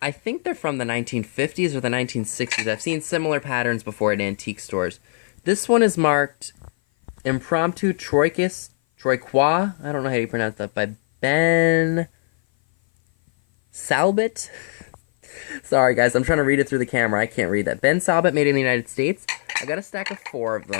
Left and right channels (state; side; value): silent; right; 57 dB below the other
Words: I think they're from the 1950s or the 1960s. I've seen similar patterns before at antique stores. This one is marked Impromptu Troiquois, I don't know how you pronounce that, by Ben Salbit. Sorry guys, I'm trying to read it through the camera. I can't read that. Ben Salbit, made in the United States. I got a stack of 4 of